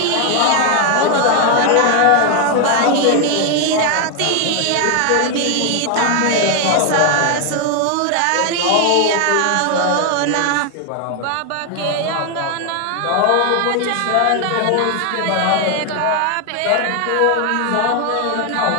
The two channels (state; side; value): different; both; correlation 0.01